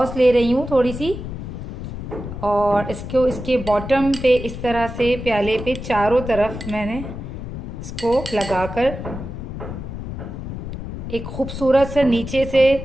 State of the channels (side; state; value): left; noise; rumble, 8 dB below the sound